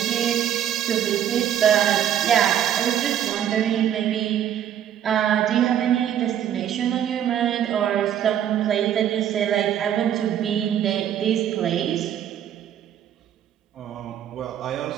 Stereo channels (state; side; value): quieter; left; 10.2 dB